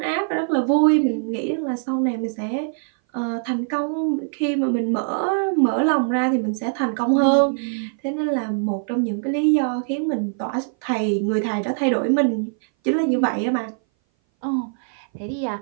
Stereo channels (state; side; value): silent; left; 59 dB below the other